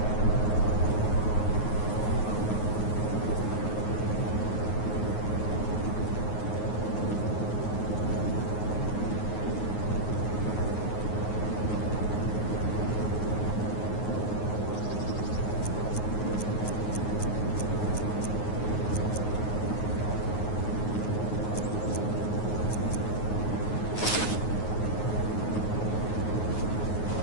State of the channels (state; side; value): late; right; 9.5 ms